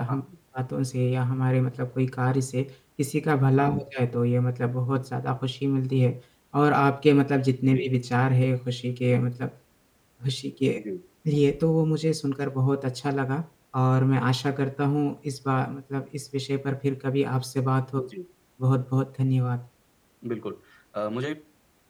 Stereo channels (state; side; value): identical; both; correlation 1.00